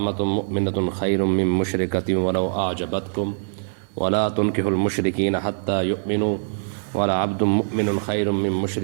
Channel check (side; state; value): left; silent; digital silence